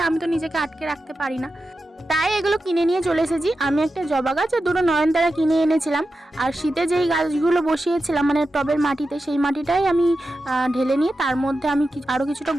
আমি তো নিজেকে আটকে রাখতে পারি না, তাই এগুলো কিনে নিয়ে চলে এসেছি। আমি একটা জবা গাছ আর দুটো নয়নতারা কিনে এনেছিলাম। আর শীতে যেই গাছগুলো বসিয়েছিলাম মানে টবের মাটিতে, সেই মাটিটাই আমি ঢেলে নিয়ে তার মধ্যে আমি আরও কিছুটা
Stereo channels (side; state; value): both; normal; correlation 0.91